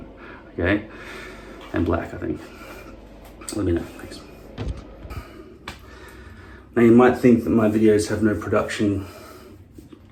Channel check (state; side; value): identical; both; correlation 1.00